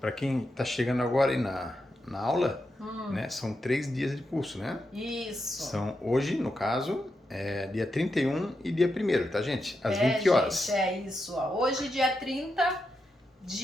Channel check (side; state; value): both; normal; correlation 0.86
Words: para quem tá chegando agora aí na aula, né, são 3 dias de curso, né? Isso. São hoje, no caso, dia 31 e dia 1º, tá, gente? Às 20 horas. Gente, isso, ó. Hoje, dia 30,